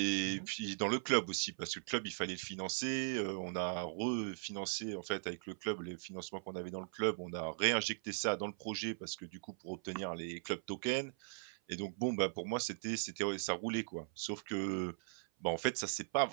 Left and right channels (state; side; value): silent; left; 52 dB below the other